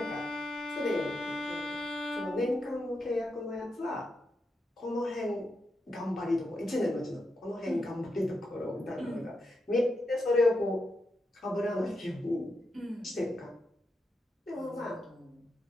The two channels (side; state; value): both; normal; correlation 0.85